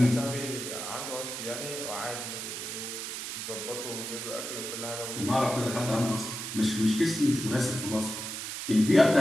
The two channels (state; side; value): noise; right; hiss, 6 dB below the sound